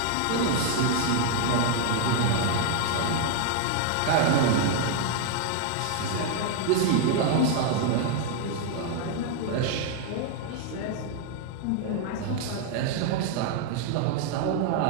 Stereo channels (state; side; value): different; both; correlation 0.00